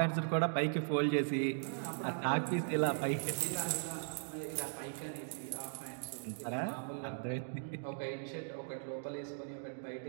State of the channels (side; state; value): left; silent; digital silence